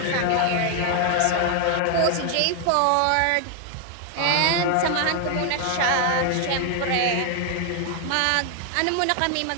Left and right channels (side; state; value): both; different; correlation 0.00